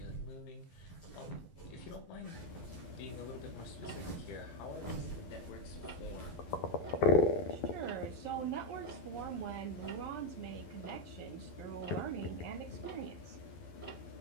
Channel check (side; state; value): right; late; 12 ms